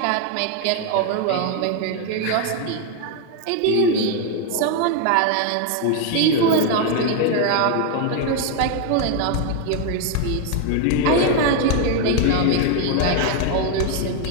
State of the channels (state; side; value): different; both; correlation 0.01